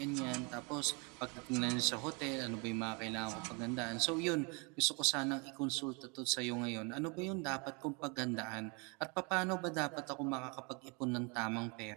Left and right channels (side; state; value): left; quieter; 32.1 dB